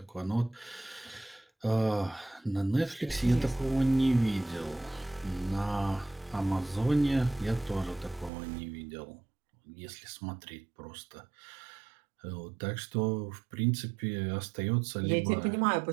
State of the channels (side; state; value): left; drops out; at 8.3 s